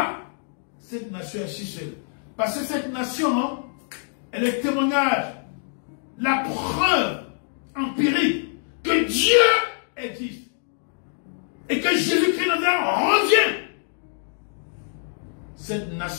cette nation est si seule? Parce que cette nation, elle est le témoignage, la preuve empirique que Dieu existe et que Jésus-Christ revient. Cette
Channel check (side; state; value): right; silent; digital silence